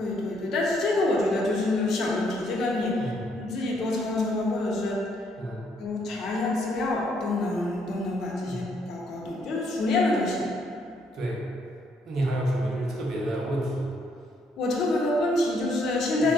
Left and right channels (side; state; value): both; normal; correlation 0.71